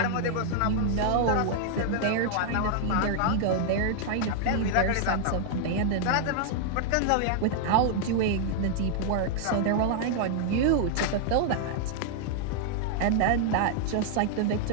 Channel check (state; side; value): different; both; correlation -0.01